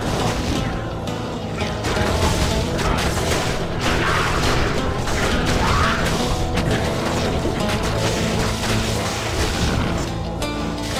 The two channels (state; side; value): identical; both; correlation 1.00